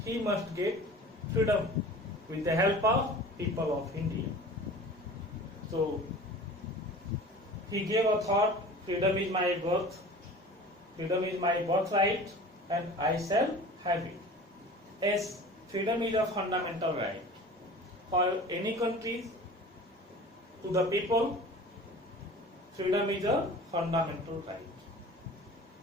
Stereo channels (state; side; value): normal; both; correlation 0.40